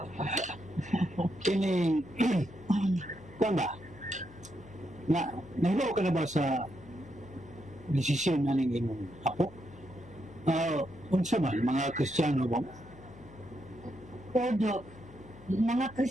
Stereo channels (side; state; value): left; noise; hum, 20 dB below the sound